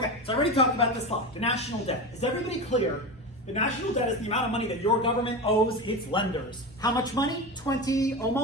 so I already talked about this slide, the national debt. Is everybody clear? The national debt is the amount of money that your government owes its lenders. How much money?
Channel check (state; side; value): normal; both; correlation 0.23